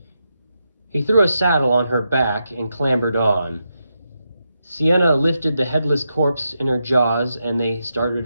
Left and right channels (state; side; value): inverted; both; correlation -0.85